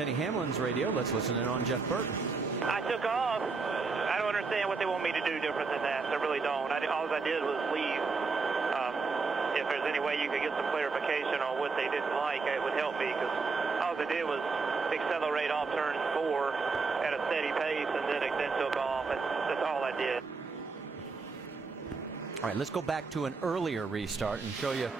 Hamlin's radio. Let's listen in on Jeff Burton. I took off. I don't understand what they want me to do different than that. I really don't. All I did was leave. If there's any way you could get some clarification on what they didn't like, it would help me, because all I did was accelerate off turn 4 at a steady pace and then took off. That's all I did. All right, let's go back to an earlier restart and show you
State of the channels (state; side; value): quieter; left; 4.4 dB